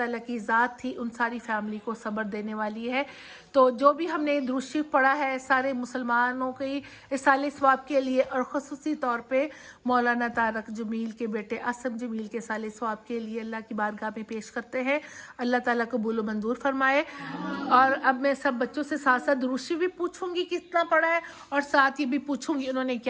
کی ذات تھی ان ساری فیملی کو صبر دینے والی ہے. تو جو بھی ہم نے درود شریف پڑھا ہے سارے مسلمانوں کی اصالہ ثواب کے لیے, اور خصوصی طور پہ مولانا طارق جمیل کے بیٹے اسم جمیل کے اصالہ ثواب کے لیے اللہ کی بارگاہ میں پیش کرتے ہیں. اللہ تعالیٰ قبول و منظور فرمائے. اور اب میں سب بچوں سے ساتھ ساتھ درود شریف بھی پوچھوں گی کتنا پڑھا ہے, اور ساتھ یہ بھی پوچھوں گی انہوں نے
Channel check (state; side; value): identical; both; correlation 1.00